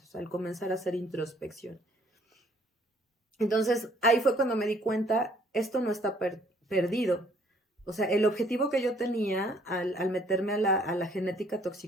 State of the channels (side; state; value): both; normal; correlation 0.62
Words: al comenzar a hacer introspección. Entonces, ahí fue cuando me di cuenta, esto no está perdido. O sea, el objetivo que yo tenía al meterme a la genética